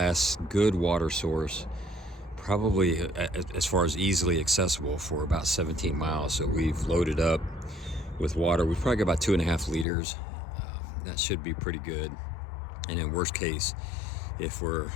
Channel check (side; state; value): right; drops out; at 9.9 s